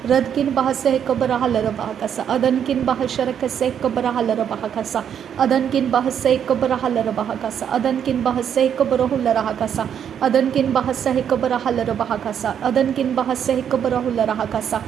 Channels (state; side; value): quieter; left; 8.6 dB